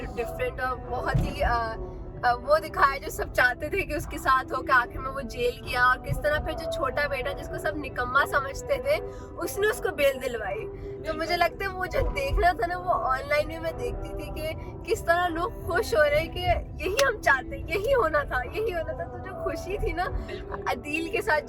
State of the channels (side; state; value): both; identical; correlation 1.00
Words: डिफरेंट और बहुत ही वो दिखाया जो सब चाहते थे कि उसके साथ हो, के आखिर में वो जेल गया, और किस तरह फिर जो छोटा बेटा जिसको सब निकम्मा समझते थे उसने उसको बेल दिलवाई। तो मुझे लगता है वो जो देखना था ना वो ऑनलाइन में मैं देखती थी कि किस तरह लोग खुश हो रहे हैं कि यही हम चाहते, यही होना था, यही होना था। तो जो खुशी थी ना अदील के साथ